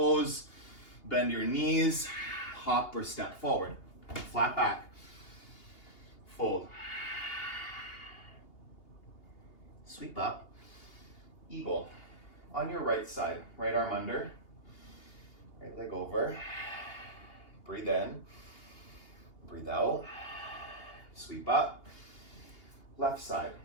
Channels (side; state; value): right; late; 2.8 ms